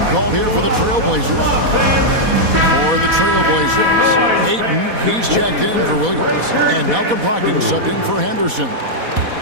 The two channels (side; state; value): left; late; 4.1 ms